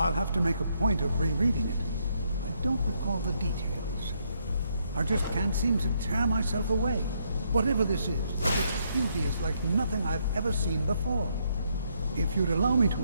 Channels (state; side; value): inverted; both; correlation -0.74